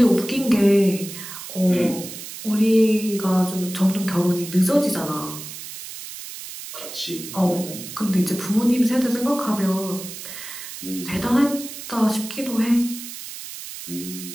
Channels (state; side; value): noise; right; hiss, 11 dB below the sound